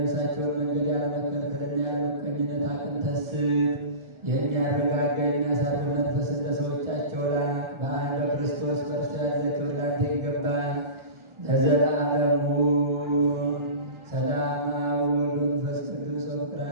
መንገድ ያለመከልከልና ያለመቀኝነት አቅንተህ ስጥ። የሚያረጋጋ የሚያሳርፍ መንፈስ እንደ ሰዎቻቸው ላክ። በአንድ በክርስቶስ በእርሱ ያለ ክብር ላንተ ይገባል ለዘላለሙ። ሰላም አብ ወወልድ ወመንፈስ ቅዱስ ወፍቅር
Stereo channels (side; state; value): left; late; 1.4 ms